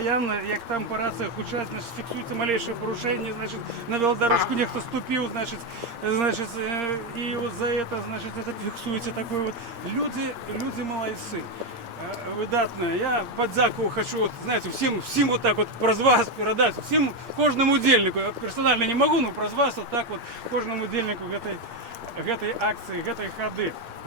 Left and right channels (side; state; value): left; late; 8.6 ms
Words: як там по раціях учать, значить, фіксується малейше порушення, значить, на велодорожку ніхто ступив, значить, і от за це, значить, це фіксується таке от. Люди молодці. Видатно. Я подяку хочу, вот, знаете, всем вот так вот про вас передать, всем, кожному удельнику, я персонально не могу, но про вас вот так вот, кожному удельнику этой акции, этой ходы.